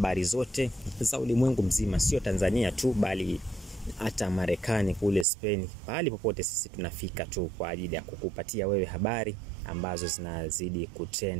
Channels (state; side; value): drops out; left; at 5.2 s